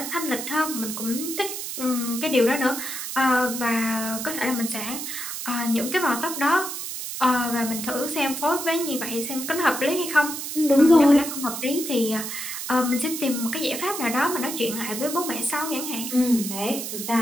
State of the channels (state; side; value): noise; right; hiss, 6 dB below the sound